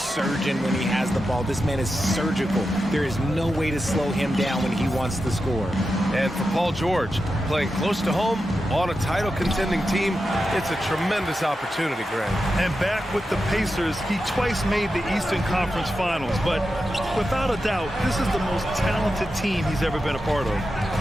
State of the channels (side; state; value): both; normal; correlation 0.90